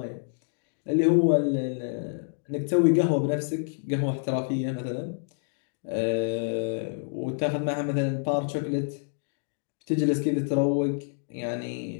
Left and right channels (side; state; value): right; silent; digital silence